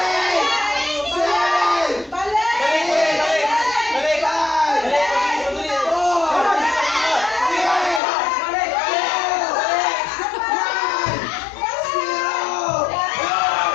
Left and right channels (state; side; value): drops out; right; at 8.0 s